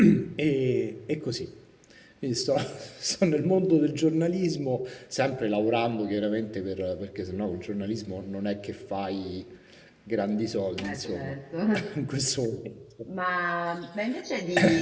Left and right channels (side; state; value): both; identical; correlation 1.00